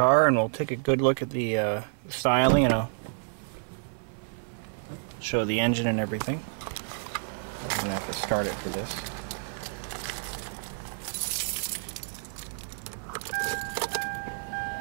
and we'll take a good look at the styling, and I'll show the engine and everything. I'm going to have to start it for this.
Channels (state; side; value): silent; left; digital silence